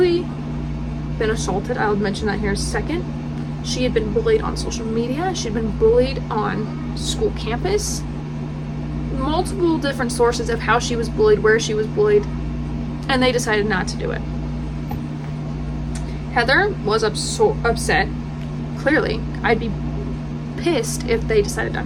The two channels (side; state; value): both; identical; correlation 1.00